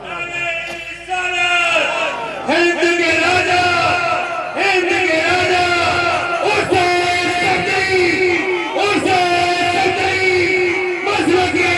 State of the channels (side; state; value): both; identical; correlation 1.00